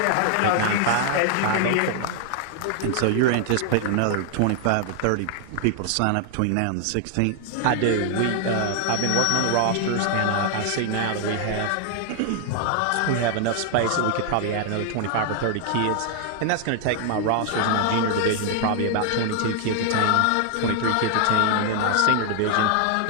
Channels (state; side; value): different; both; correlation 0.00